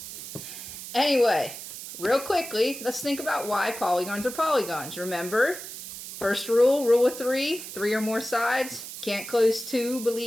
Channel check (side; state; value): right; noise; hiss, 11 dB below the sound